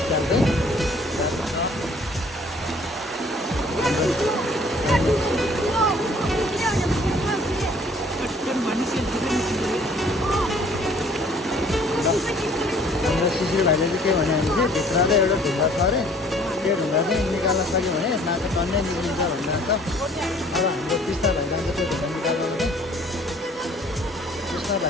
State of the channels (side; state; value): both; normal; correlation 0.56